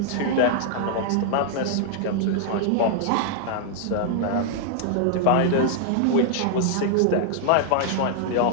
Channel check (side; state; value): both; different; correlation -0.01